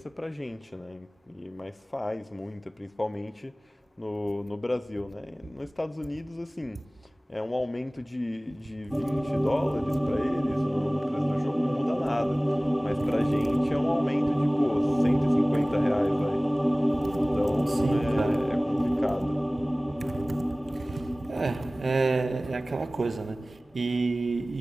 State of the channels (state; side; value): normal; both; correlation 0.98